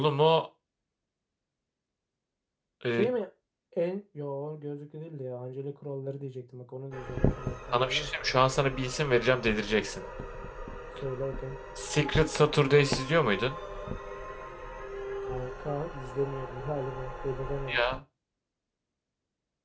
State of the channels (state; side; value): identical; both; correlation 1.00